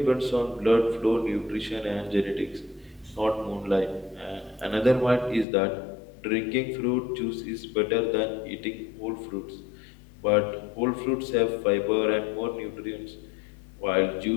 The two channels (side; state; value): right; drops out; at 5.5 s